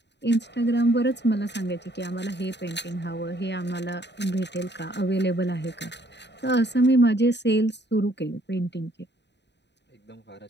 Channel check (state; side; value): late; right; 0.50 ms